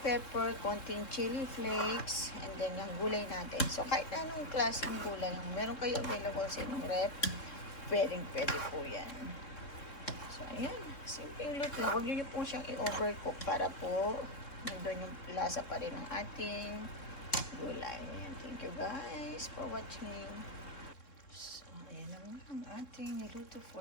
konting chili flakes, and then yung gulay natin. So, kahit anong klaseng gulay yung meron kayo available sa inyong rep, pwede po yan. So, ayan. Simple luto lang. Huwag nyo po siyang i-overcook para po nandun yung lasa pa rin ng ating gulay. Ayan. Thank you guys for watching. So, ayan naman ang ating niluto for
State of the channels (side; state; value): right; late; 3.7 ms